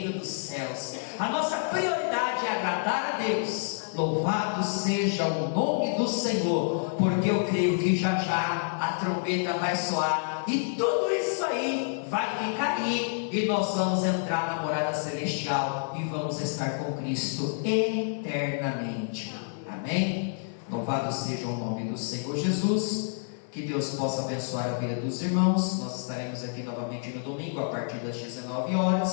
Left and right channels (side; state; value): right; silent; digital silence